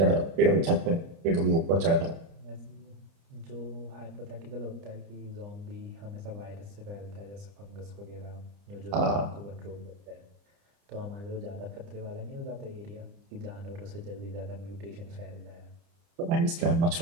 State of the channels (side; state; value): left; late; 30 ms